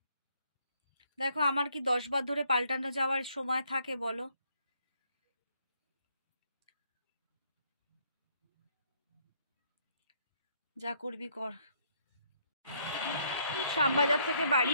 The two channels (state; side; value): inverted; both; correlation -0.69